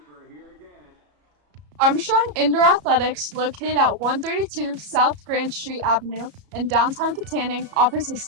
we're here again. Armstrong Indoor Athletics, located at 132 South Grand Street Avenue in downtown Katanning, offers a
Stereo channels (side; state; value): left; late; 34 ms